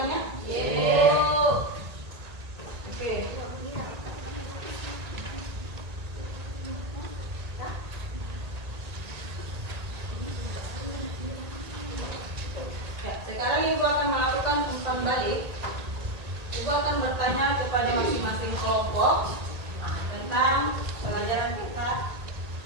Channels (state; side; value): late; left; 1.8 ms